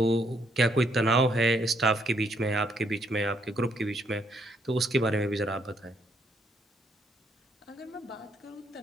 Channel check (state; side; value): normal; both; correlation 0.71